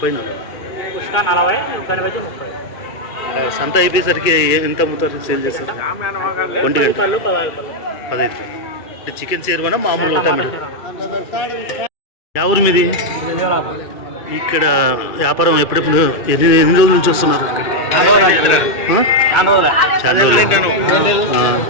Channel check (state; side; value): late; right; 2.4 ms